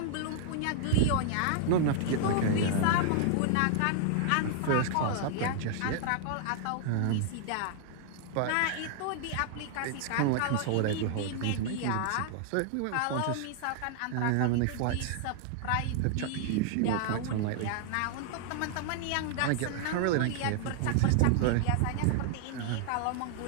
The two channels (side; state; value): both; different; correlation 0.00